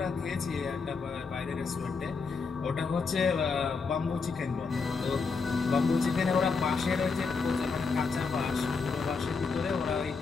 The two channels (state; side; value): quieter; right; 4.8 dB